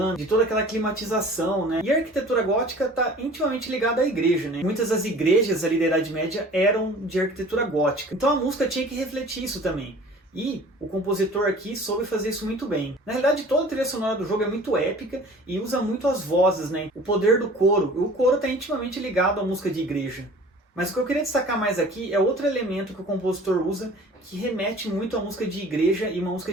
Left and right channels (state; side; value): normal; both; correlation 0.46